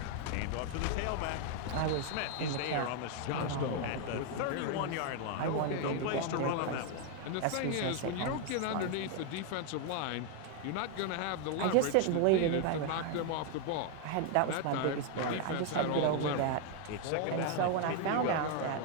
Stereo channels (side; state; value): both; different; correlation 0.01